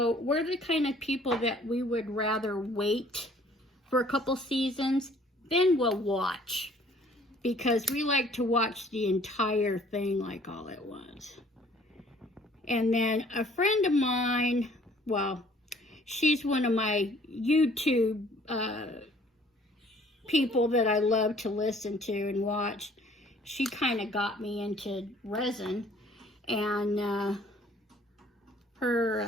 we're the kind of people that we would rather wait for a couple seasons, then we'll watch. Because we like to watch the entire thing like all at once. And then a friend of mine, well, she's one of my YouTube people that I love to listen to and watch. She kind of got me into resin, and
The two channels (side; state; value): both; normal; correlation 0.57